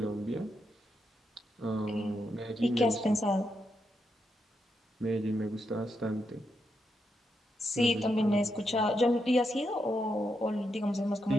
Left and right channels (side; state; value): both; normal; correlation 0.83